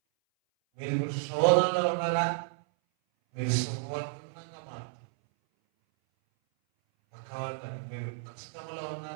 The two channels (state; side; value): silent; left; 57 dB below the other